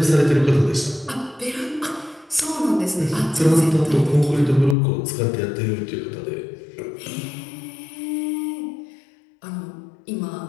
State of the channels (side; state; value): right; drops out; at 4.8 s